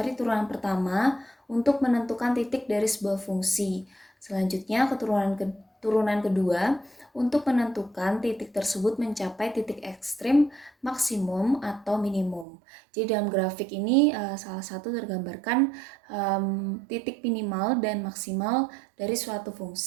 turunan pertama untuk menentukan titik dari sebuah fungsi. Selanjutnya turunan kedua untuk menentukan titik tersebut mencapai titik ekstrim, maksimum, atau minimum. Jadi dalam grafik ini salah satu tergambarkan titik minimal dan maksimal dari suatu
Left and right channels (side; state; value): left; drops out; at 12.5 s